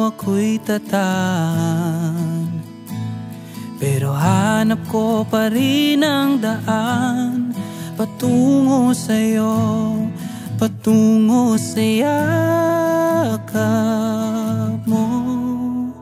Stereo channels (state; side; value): identical; both; correlation 1.00